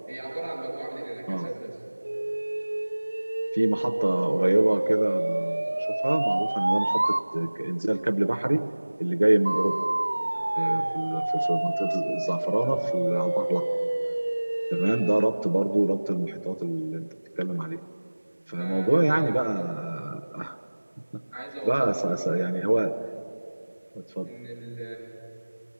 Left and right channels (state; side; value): inverted; both; correlation -1.00